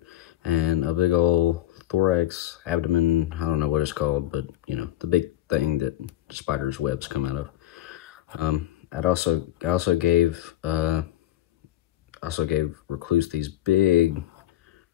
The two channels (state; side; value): quieter; right; 13.7 dB